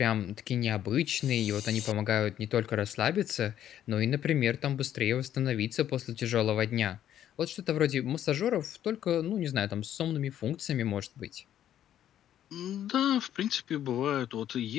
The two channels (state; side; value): quieter; right; 11.0 dB